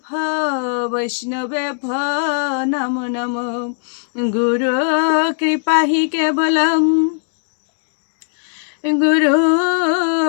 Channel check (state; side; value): silent; right; digital silence